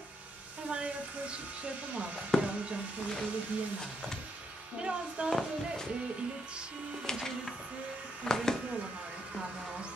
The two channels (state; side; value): normal; both; correlation 0.77